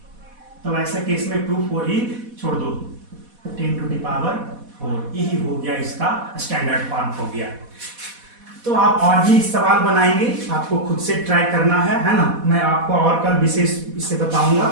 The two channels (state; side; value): late; left; 4.1 ms